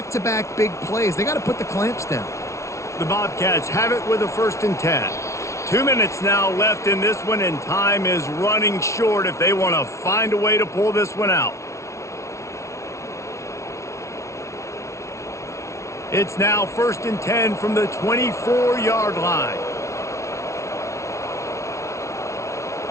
big plays. They got to put the clamps down. The Bobcats have it with a 1st and 10. 2 minutes now left in this one, and time is running short if they want to find a way to pull this one out. It's now 1st and 10 from the 24-yard line.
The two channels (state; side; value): late; right; 0.14 ms